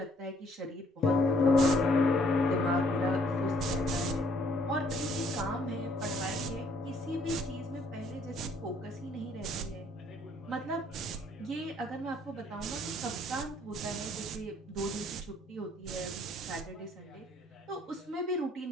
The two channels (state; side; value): normal; both; correlation 0.63